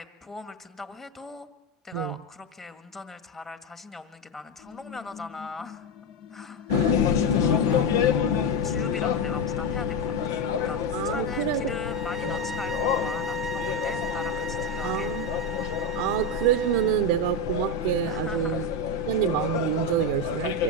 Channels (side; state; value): both; normal; correlation 0.11